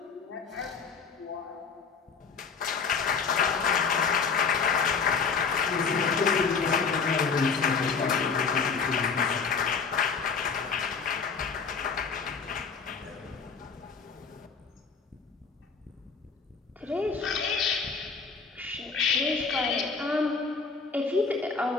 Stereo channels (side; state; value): right; quieter; 5.3 dB